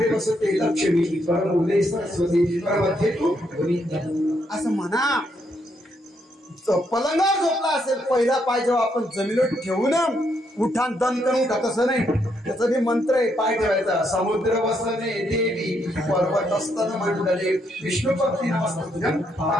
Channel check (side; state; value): both; normal; correlation 0.76